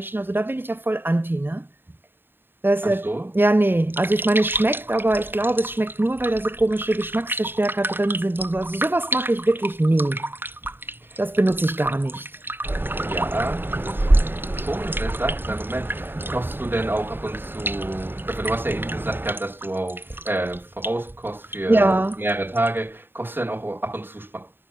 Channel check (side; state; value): left; late; 0.10 ms